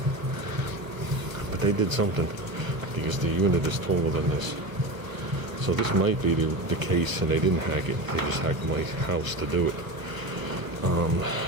but they did something because the unit is taller than this. So this might be the case, and they didn't hack it. They just hacked my house to do it.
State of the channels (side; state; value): left; late; 1.0 ms